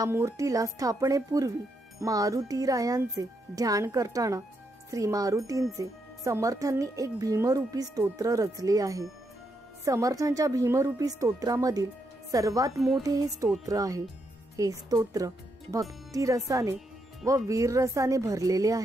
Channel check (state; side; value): normal; both; correlation 0.80